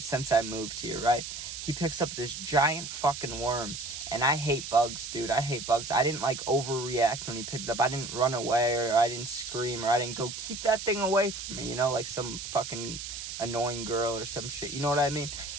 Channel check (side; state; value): right; noise; hiss, 8 dB below the sound